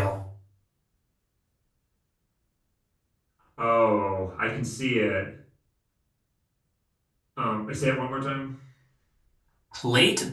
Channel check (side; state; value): both; identical; correlation 1.00